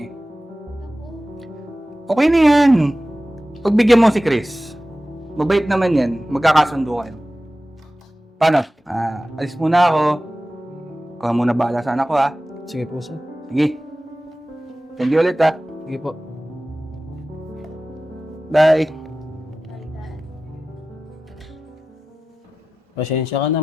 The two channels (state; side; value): normal; both; correlation 0.95